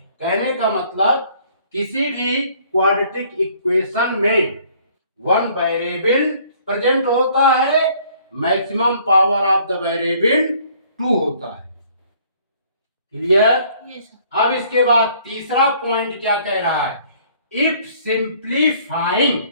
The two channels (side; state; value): both; inverted; correlation -0.59